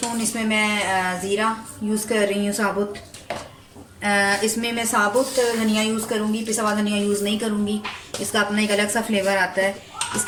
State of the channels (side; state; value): both; identical; correlation 1.00